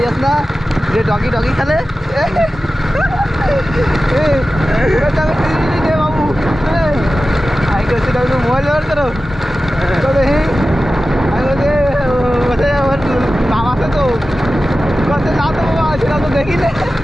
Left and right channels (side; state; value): both; normal; correlation 0.94